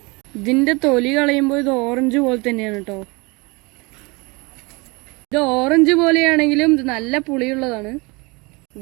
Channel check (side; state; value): left; quieter; 26.8 dB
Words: ഇതിന്റെ തൊലി കളയുമ്പോൾ ഇത് ഓറഞ്ച് പോലെ തന്നെയാണ് കേട്ടോ. ഇത് ഓറഞ്ച് പോലെയാണെങ്കിലും ഇത് നല്ല പുളിയുള്ളതാണ്.